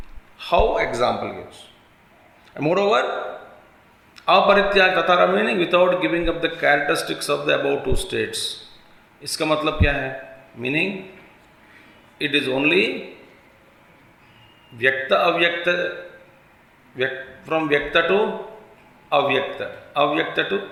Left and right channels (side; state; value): both; identical; correlation 1.00